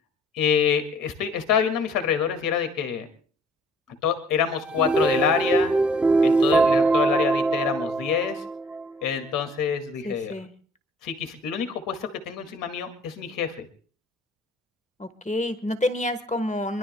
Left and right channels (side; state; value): both; normal; correlation 0.56